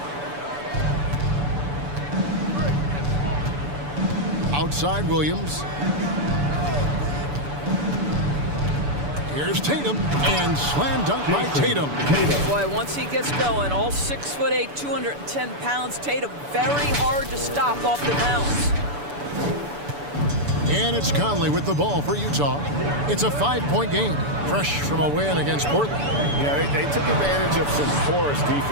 Outside Williams. Here's Tatum, and slam dunk by Tatum. Boy, once he gets going, all 6'8", 210 pounds, Tatum very hard to stop off the bounce. And it's Conley with the ball for Utah. It's a 5-point game, fresh from a win against Portland. Yeah, they took advantage of some porous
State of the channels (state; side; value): late; left; 6.9 ms